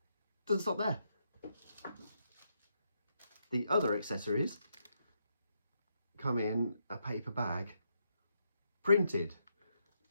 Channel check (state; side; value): inverted; both; correlation -0.79